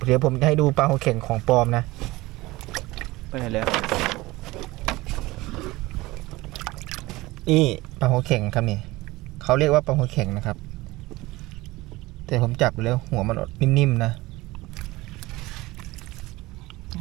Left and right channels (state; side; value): quieter; left; 20.1 dB